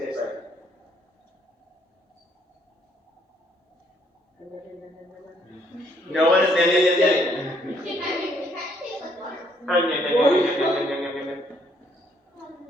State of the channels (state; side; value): normal; both; correlation 0.68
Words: like. No one is.